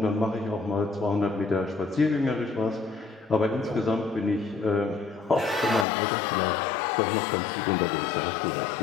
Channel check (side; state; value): right; drops out; at 5.9 s